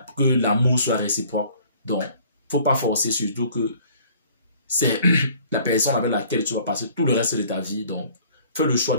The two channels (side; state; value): both; inverted; correlation -0.54